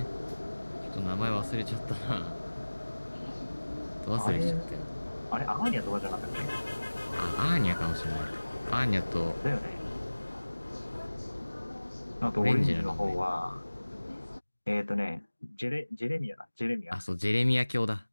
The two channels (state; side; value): inverted; both; correlation -1.00